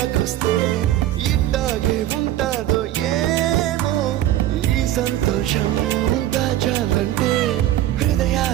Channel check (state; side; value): quieter; left; 13.4 dB